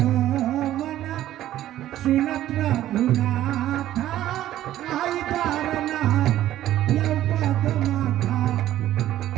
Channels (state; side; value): quieter; left; 13.2 dB